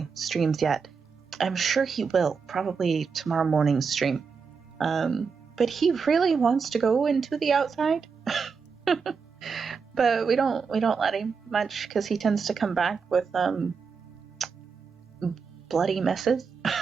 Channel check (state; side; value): quieter; left; 5.5 dB